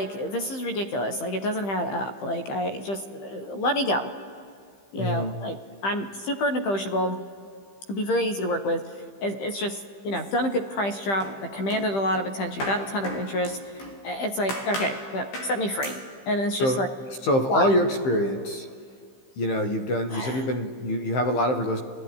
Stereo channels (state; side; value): late; right; 15 ms